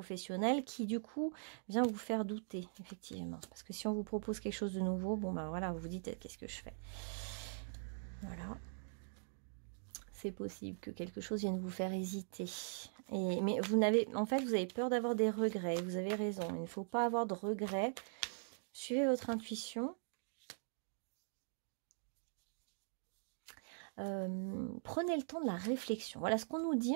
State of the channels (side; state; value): left; silent; digital silence